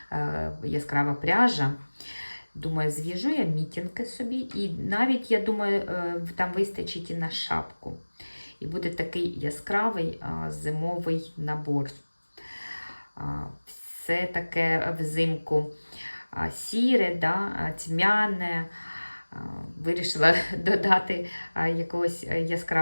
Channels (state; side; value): inverted; both; correlation -1.00